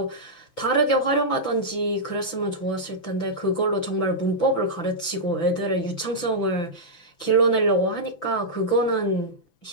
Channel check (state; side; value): late; right; 6.0 ms